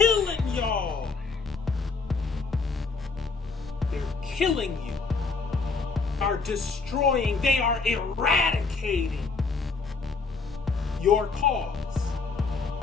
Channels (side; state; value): right; quieter; 4.5 dB